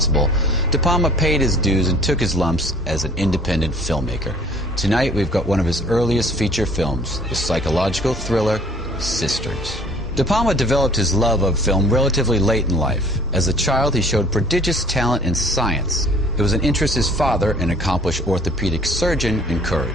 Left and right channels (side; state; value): both; normal; correlation 0.52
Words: De Palma paid his dues and took his lumps as an independent filmmaker. Tonight, we've got one of his earliest feature films, the psychological thriller Sisters. De Palma developed his love of film relatively late in life. As a child, he showed prodigious talent in science. It was an interest his father, an accomplished orthopedic surgeon,